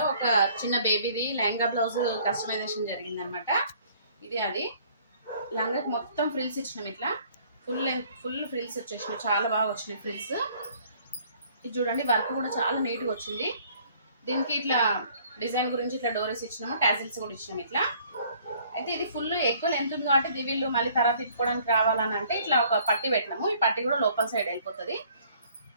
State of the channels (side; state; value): both; inverted; correlation -0.58